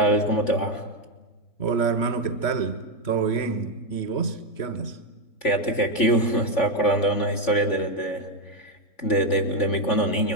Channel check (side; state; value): right; late; 3.5 ms